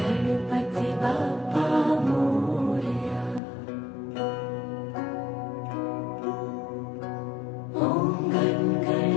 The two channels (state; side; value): drops out; right; at 3.4 s